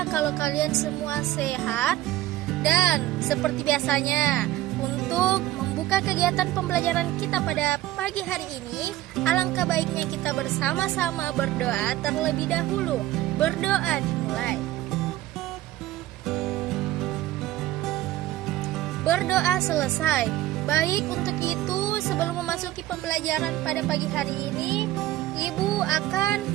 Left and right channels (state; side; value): quieter; left; 15.2 dB